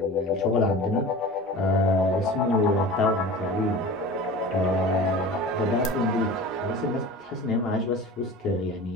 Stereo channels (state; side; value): normal; both; correlation 0.36